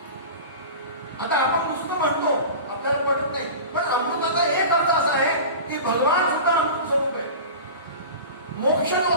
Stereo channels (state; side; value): inverted; both; correlation -0.33